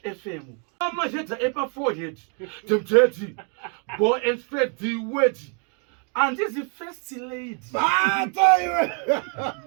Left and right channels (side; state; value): left; quieter; 38.0 dB